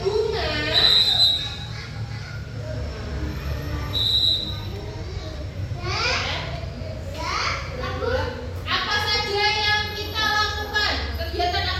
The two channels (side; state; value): both; identical; correlation 1.00